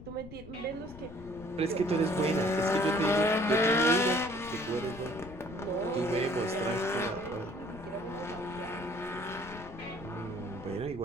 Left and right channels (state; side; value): noise; left; rumble, 15 dB below the sound